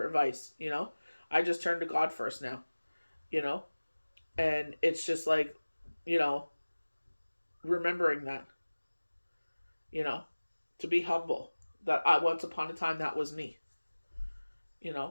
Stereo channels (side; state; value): both; inverted; correlation -1.00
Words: advice. I just turn to God first now, and it's just like, remembering that, to be humble, that once upon a time that was me. You